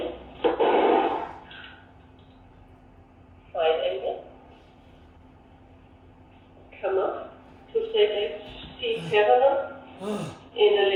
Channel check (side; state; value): both; identical; correlation 1.00